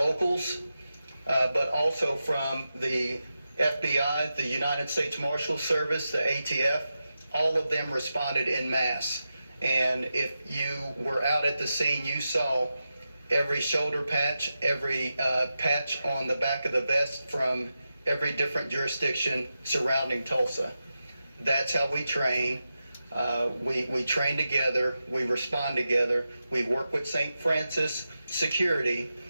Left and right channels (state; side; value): inverted; both; correlation -0.90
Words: but also from the FBI, the United States Marshal Service, the ATF. All of them responded en masse. And if you were out at the scene, you saw every shoulder patch, every patch on the back of the vest from every different jurisdiction surrounding Tulsa. That's how we train. We train together, we respond together, we work with St. Francis Security,